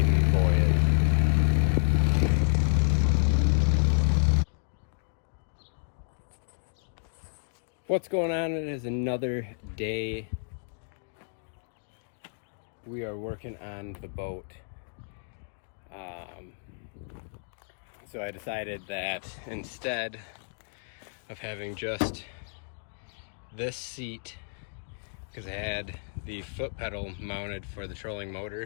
voyage. What's going on? It is another day. We are working on the boat. So I decided that instead of having just this seat, because I had the foot pedal mounted for the trolling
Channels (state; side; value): silent; right; digital silence